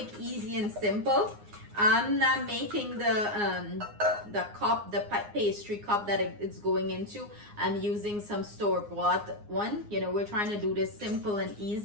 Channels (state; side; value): late; left; 9.7 ms